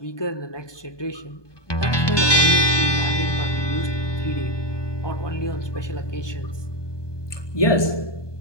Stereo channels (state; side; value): late; right; 1.2 ms